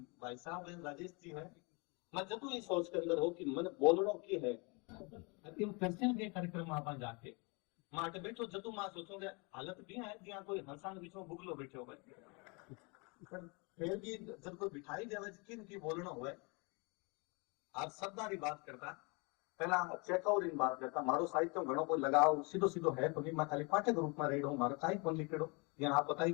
भाई साहब राजेश जी है मैं जदू ये सोच के अंदर हो कि मन बोलनो की है फैशन के कार्यक्रम में आप जाके माटे बैठो जदू मां सोचोगे हालत भी है जहाँ कोई हंसान बीच में बुगलो बैठे हो फिर भी जब कोई बिठाई देवे किन की बोलना हुए आज शब्दारी बात करता पहला चेकआउट इन बात करता मारो साहित्य घणो कोई लगाव सीधो सीधो है तो नहीं मैं खाली पाठक रूप में रेडो मारो काई कोन लिखेड़ो यहाँ आप बताई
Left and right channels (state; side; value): quieter; right; 30.7 dB